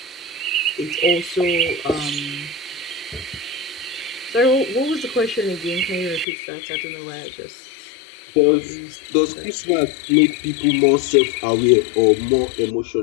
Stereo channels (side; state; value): right; drops out; at 6.2 s